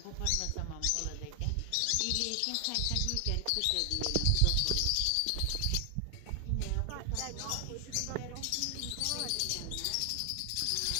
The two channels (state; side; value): different; both; correlation 0.00